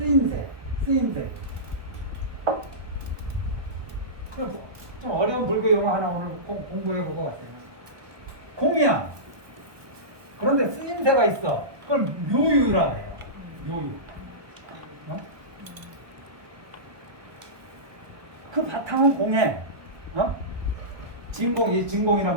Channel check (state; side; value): late; left; 1.2 ms